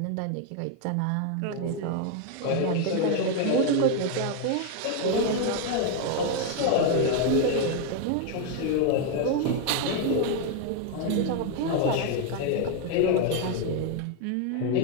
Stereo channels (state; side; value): different; both; correlation 0.00